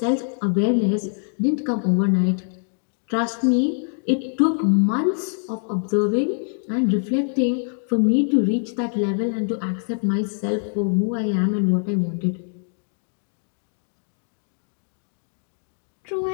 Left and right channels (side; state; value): right; silent; 63 dB below the other